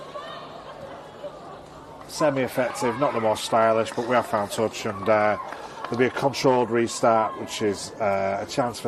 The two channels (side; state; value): both; identical; correlation 1.00